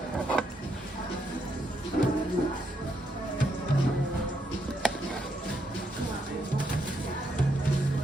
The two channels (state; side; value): normal; both; correlation 0.77